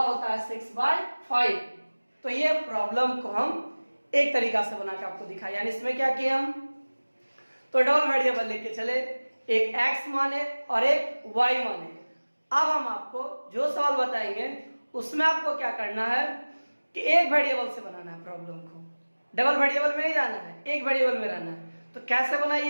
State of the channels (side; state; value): both; inverted; correlation -1.00